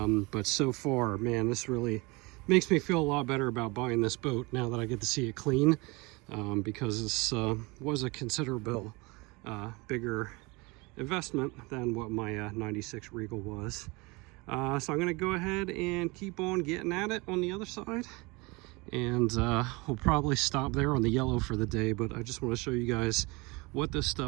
so far, man, this really makes me feel a lot better about buying this boat now that I get to see it clean, because this was a considerable bigger investment than what my 96 Regal was. So I'm going to go ahead and keep on getting at it on the other side, and we'll probably stop there on the yellow for the day. But I just want to show you guys what this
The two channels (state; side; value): quieter; left; 25.7 dB